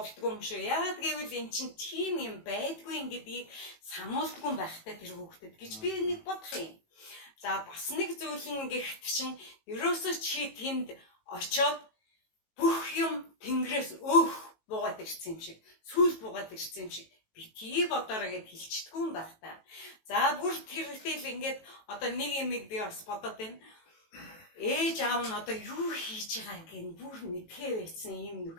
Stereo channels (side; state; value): right; late; 18 ms